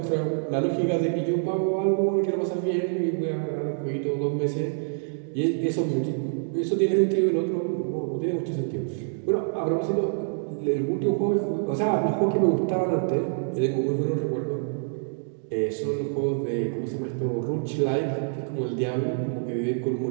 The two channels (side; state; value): left; silent; digital silence